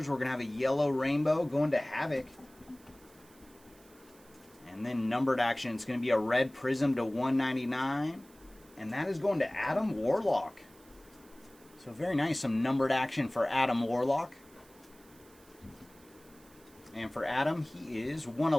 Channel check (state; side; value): noise; right; hiss, 26 dB below the sound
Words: we're going to have a yellow rainbow going to Havoc. And then numbered action, it's going to be a red prism to 199. And that is going to Adam Warlock. So very nice, some numbered action for Adam Warlock. And for Adam, he is